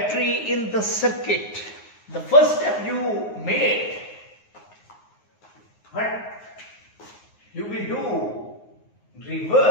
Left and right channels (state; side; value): late; right; 9.5 ms